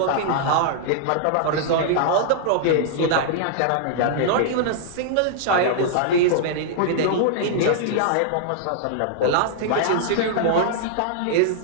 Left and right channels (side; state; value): both; different; correlation -0.01